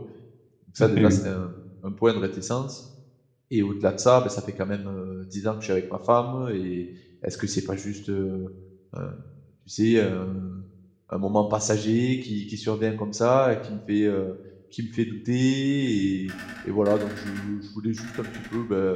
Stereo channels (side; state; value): both; identical; correlation 1.00